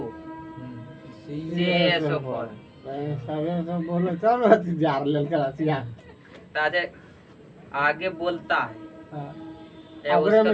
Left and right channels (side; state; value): both; identical; correlation 1.00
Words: CuCSO4। आगे बोलता है हाँ। या अग्रे में